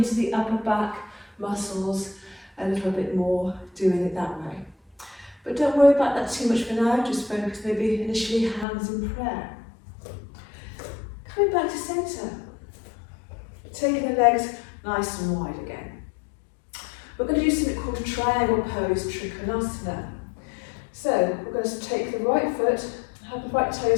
the upper back muscles a little bit more doing it that way. But don't worry about that too much for now, just focus maybe initially hands in prayer. Coming back to centre, taking the legs nice and wide again. We're going to do something called a triangle pose, Trikonasana. So we're going to take the right foot, have the right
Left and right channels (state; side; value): drops out; right; at 8.7 s